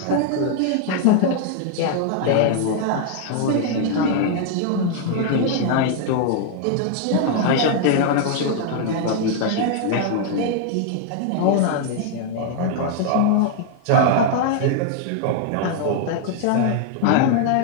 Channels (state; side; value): different; both; correlation 0.00